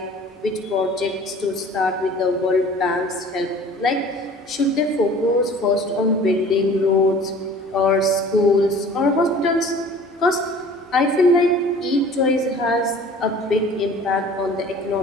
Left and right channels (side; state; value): both; normal; correlation 0.47